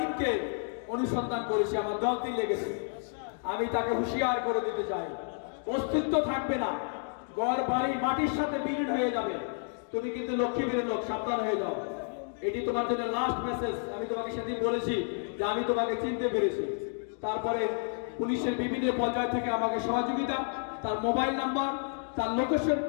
অনুসন্ধান করেছি, আমার দলটি লেগেছে। আমি তাকে হুঁশিয়ার করে দিতে চাই, অস্তিত্ব থাকবে না, ঘর বাড়ি মাটির সাথে বিলীন হয়ে যাবে। তুমি কিন্তু লক্ষ্মীপুরের লোক, সাবধান হয়ে যাও। এটি তোমার জন্য লাস্ট মেসেজ। আমি তোমাকে সেদিন বলেছি যে আমি তোমাকে চিনতে পেরেছি। তারপরে পুলিশের বিভিন্ন পর্যায় থেকে আমাকে সহযোগিতা, তার মোবাইল নাম্বার, তার লোকেশন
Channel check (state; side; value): silent; right; 57 dB below the other